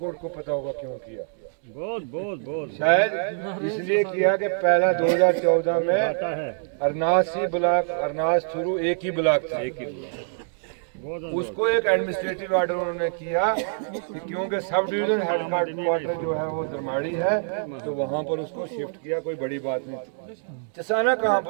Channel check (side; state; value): left; silent; digital silence